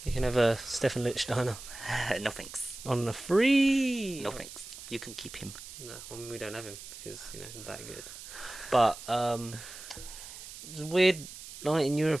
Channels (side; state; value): right; noise; hiss, 13 dB below the sound